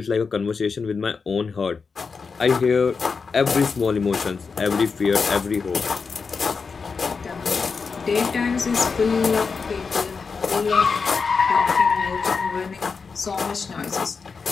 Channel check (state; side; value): quieter; right; 5.1 dB